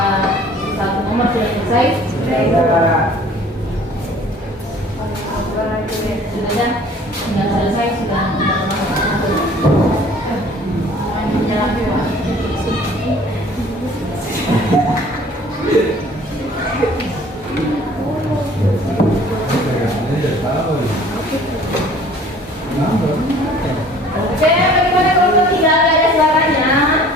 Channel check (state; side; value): normal; both; correlation 0.51